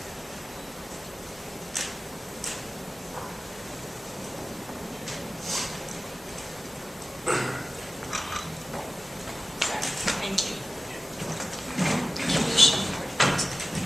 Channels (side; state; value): both; normal; correlation 0.96